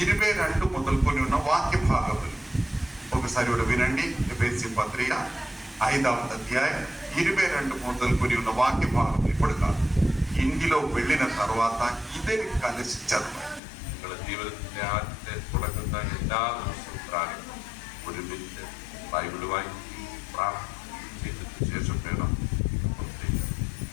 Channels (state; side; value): drops out; right; at 13.6 s